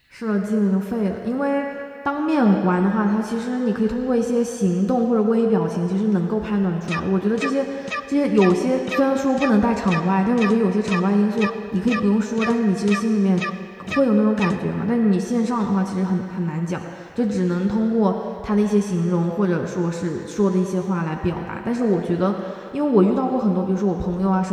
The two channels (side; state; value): both; identical; correlation 1.00